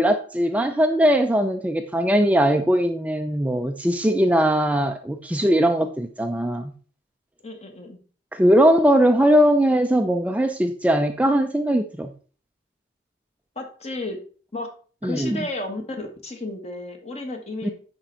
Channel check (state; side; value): normal; both; correlation 0.80